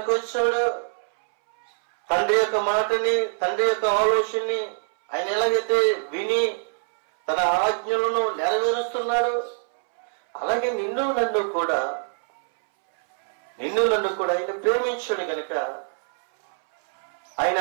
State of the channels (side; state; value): left; silent; 63 dB below the other